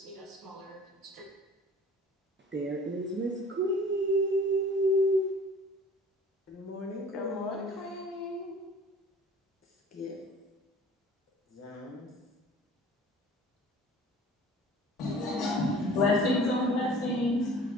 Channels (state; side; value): normal; both; correlation 0.47